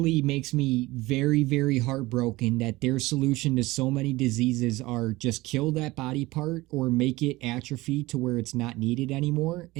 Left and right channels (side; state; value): left; quieter; 20.0 dB